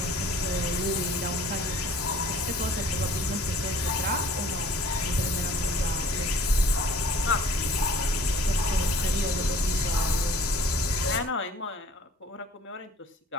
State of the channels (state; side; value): normal; both; correlation 0.52